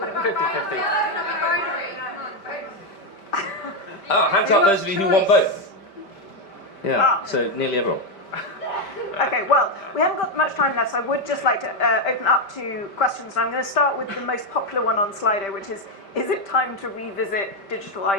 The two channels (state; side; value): late; right; 5.1 ms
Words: Oh, hands up those of you who want both. Yeah, so nearly everyone. Okay, well, we haven't got much time left, so I would just like to open up to questions. And I'm going to start with the most popular one on Slido, which is it time to revisit digital